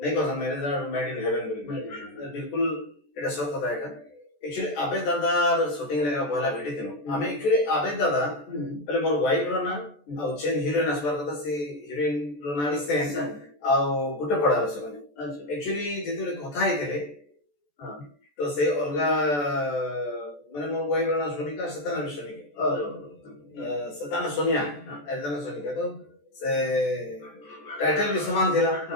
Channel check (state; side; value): late; right; 14 ms